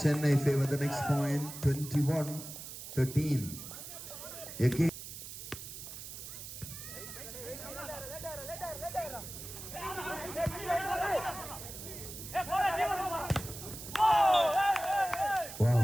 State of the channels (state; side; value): noise; right; hiss, 11 dB below the sound